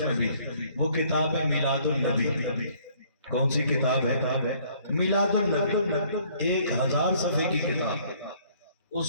میں بھی وہ کتاب ہے میلاد النبی۔ کون سی کتاب ہے؟ میلاد النبی، 1000 صفحے کی کتاب۔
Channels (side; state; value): both; inverted; correlation -0.60